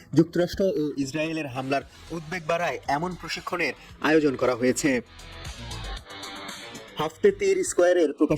যুক্তরাষ্ট্র ও ইসরায়েলের হামলার উদ্বেগ বাড়ায় এমন প্রশিক্ষণের আয়োজন করা হয়েছে। হাফতে তীর স্কোয়ারের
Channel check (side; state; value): both; identical; correlation 1.00